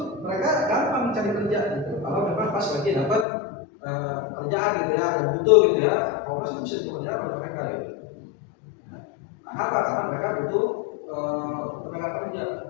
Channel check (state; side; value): drops out; right; at 3.2 s